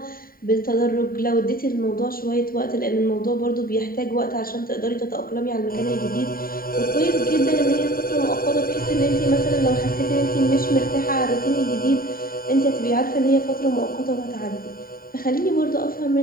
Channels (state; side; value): late; right; 0.42 ms